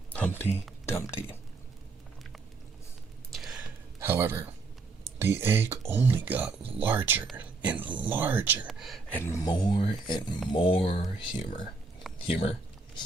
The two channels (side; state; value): left; quieter; 3.8 dB